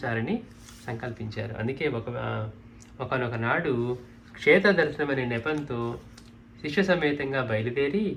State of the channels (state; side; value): identical; both; correlation 1.00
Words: సంకల్పించారు. అందుకే ఒకనొక నాడు క్షేత్ర దర్శనమనే నెపంతో శిష్య సమేతంగా బయలుదేరి